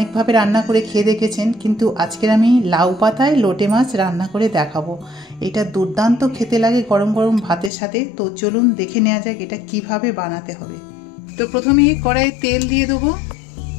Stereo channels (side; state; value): right; drops out; at 7.7 s